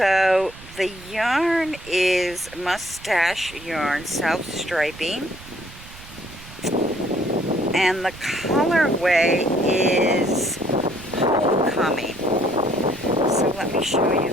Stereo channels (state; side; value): noise; right; rumble, 18 dB below the sound